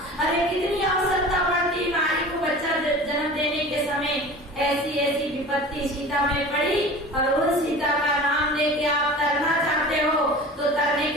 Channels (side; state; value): both; normal; correlation 0.38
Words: अरे कितनी आवश्यकता पड़ती नारी को बच्चा जन्म देने के समय। ऐसी विपत्ति सीता में पड़ी और उन सीता का नाम लेके आप तरना चाहते हो तो तरने